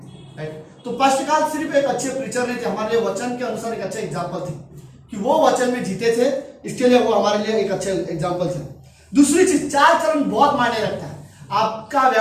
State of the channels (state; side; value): identical; both; correlation 1.00